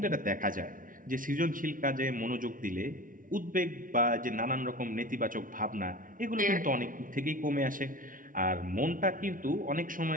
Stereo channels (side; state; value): left; late; 0.39 ms